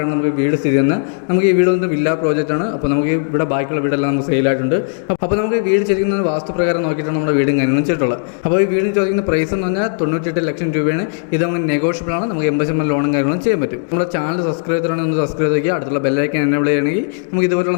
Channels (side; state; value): right; silent; digital silence